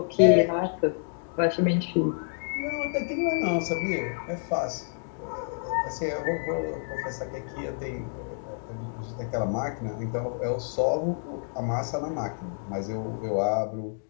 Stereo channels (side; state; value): right; silent; digital silence